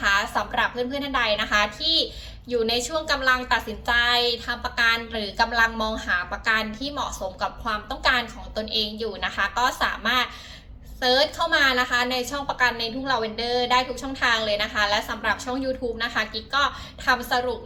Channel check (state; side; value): identical; both; correlation 1.00